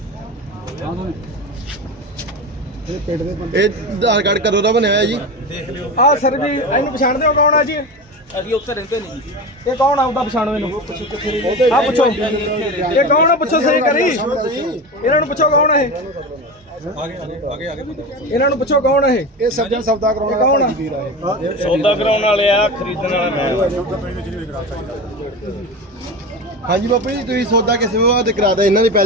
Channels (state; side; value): normal; both; correlation 0.25